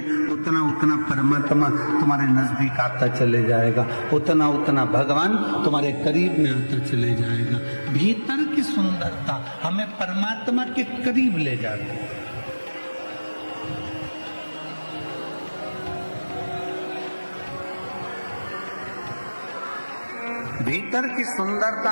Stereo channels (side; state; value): both; inverted; correlation -1.00